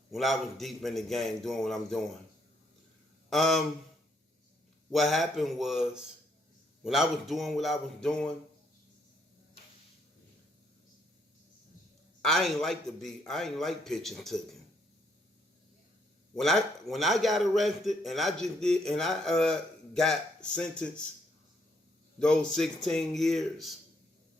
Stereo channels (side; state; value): both; normal; correlation 0.72